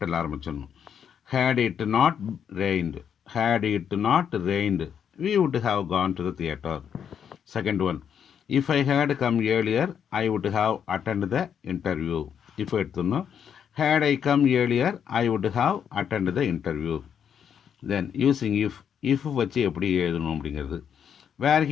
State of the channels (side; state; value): right; quieter; 8.1 dB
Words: ஆரம்பிச்சிடணும். Had it not rained, had it not rained we would have gone to the theatre. Second one, if I had come earlier I would have attended the interview. இப்போ எடுத்துடணும். had I come earlier I would have attended the interview. Then using if வச்சு எப்படி எழுதணும் அப்படிங்கிறது. were